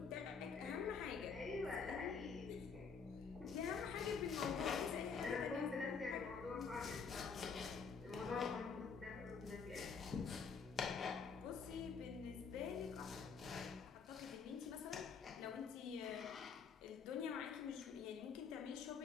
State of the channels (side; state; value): right; quieter; 5.7 dB